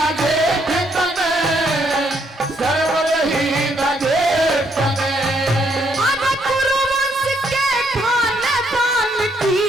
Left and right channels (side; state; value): both; normal; correlation 0.72